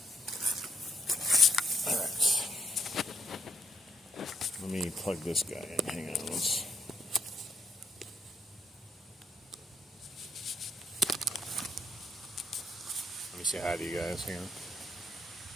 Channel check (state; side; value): normal; both; correlation 0.73